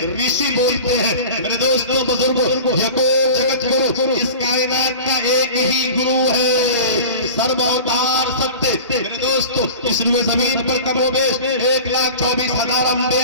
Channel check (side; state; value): both; inverted; correlation -0.36